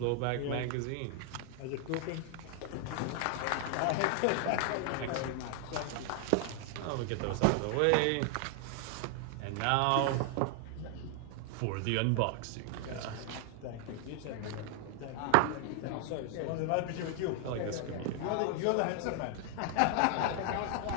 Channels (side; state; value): both; different; correlation 0.00